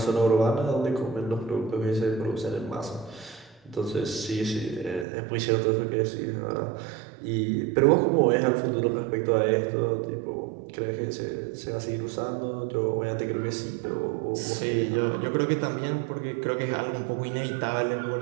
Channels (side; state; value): left; drops out; at 5.1 s